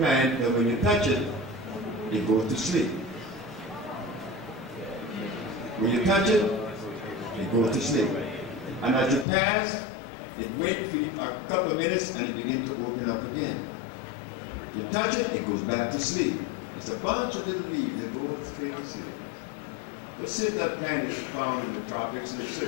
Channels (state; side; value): drops out; right; at 9.2 s